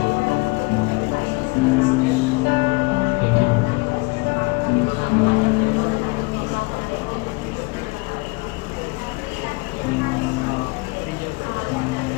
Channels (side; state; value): right; quieter; 26.9 dB